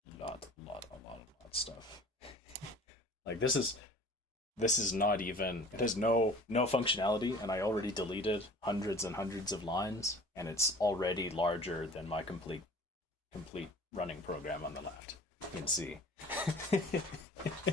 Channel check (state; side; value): normal; both; correlation 0.46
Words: A lot of stuff. Like this is not even, it has no functionality, and I already deleted hundreds and hundreds of lines, and it's already larger than my complete running program on the left in C.